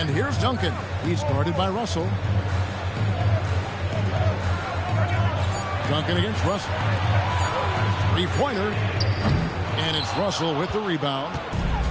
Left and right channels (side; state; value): both; identical; correlation 1.00